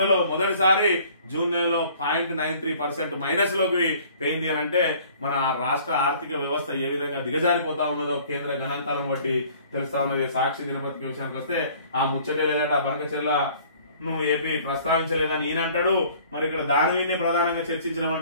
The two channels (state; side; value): inverted; both; correlation -0.53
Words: మొదటిసారి జూన్ నెలలో 0.93% మైనస్ లోకి పోయింది అని అంటే మన రాష్ట్ర ఆర్థిక వ్యవస్థ ఏ విధంగా దిగజారిపోతా ఉన్నదో కేంద్ర గణాంకాలను బట్టి తెలుస్తా ఉన్నది. సాక్షి దినపత్రిక విషయానికి వస్తే ఆ ముచ్చటే లేదట, బనకచెర్ల ఏపీ ప్రస్తావించలేదని ఈయన అంటాడు. మరి ఇక్కడ దాని మీదనే ప్రధానంగా